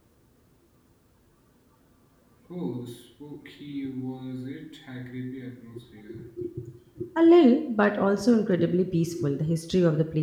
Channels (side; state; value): both; identical; correlation 1.00